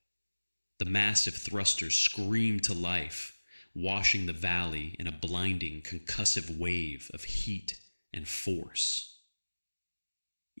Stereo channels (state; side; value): inverted; both; correlation -1.00